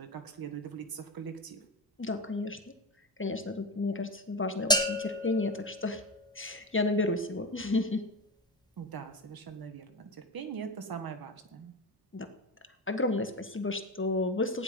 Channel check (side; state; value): both; normal; correlation 0.20